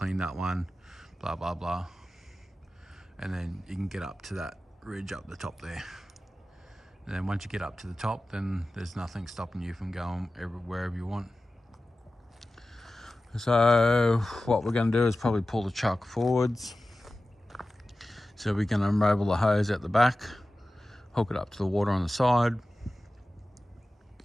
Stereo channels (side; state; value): both; normal; correlation 0.95